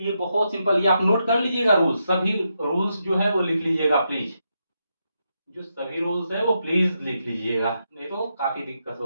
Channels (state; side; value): inverted; both; correlation -0.83